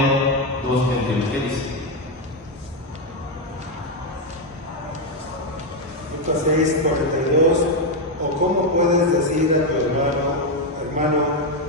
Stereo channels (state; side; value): normal; both; correlation 0.05